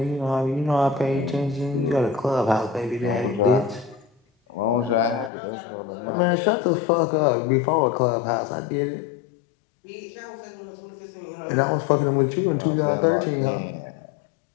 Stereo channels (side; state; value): right; drops out; at 5.3 s